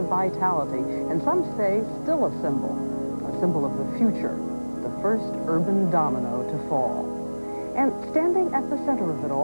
vitality, and some say still a symbol of the future, the first urban domino to fall. And standing at the center of it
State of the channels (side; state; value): both; inverted; correlation -1.00